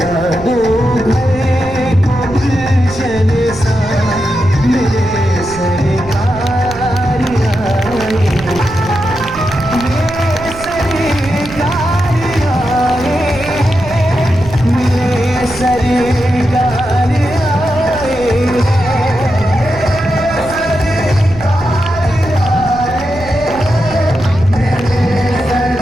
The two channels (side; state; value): right; noise; rumble, 14 dB below the sound